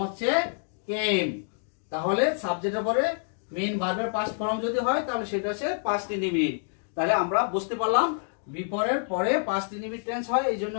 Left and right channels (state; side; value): silent; right; digital silence